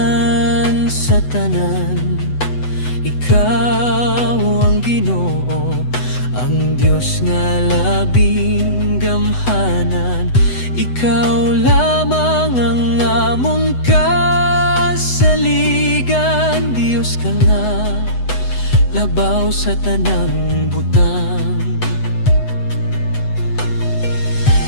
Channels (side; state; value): right; late; 8.0 ms